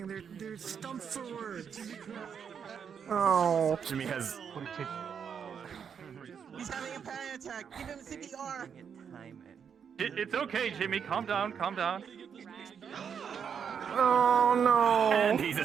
They're stumped for words. Oh. Jimmy has. He's having a panic attack. Give him CPR. It's okay, Jimmy. Calm down. Oh no! And he's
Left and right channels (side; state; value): left; quieter; 7.3 dB